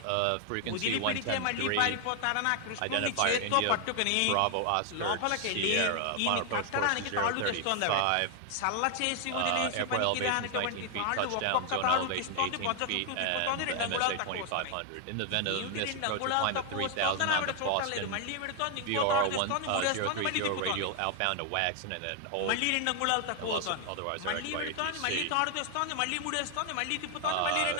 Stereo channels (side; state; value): both; different; correlation 0.00